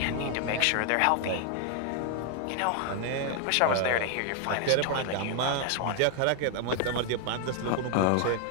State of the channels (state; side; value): different; both; correlation 0.00